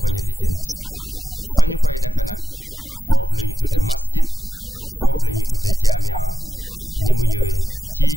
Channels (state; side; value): normal; both; correlation 0.89